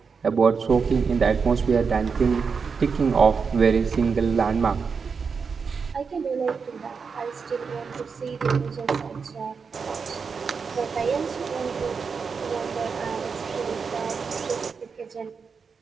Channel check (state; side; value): quieter; left; 5.5 dB